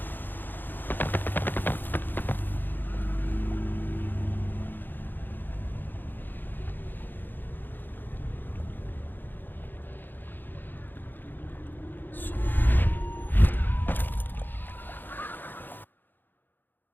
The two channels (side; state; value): right; late; 0.091 ms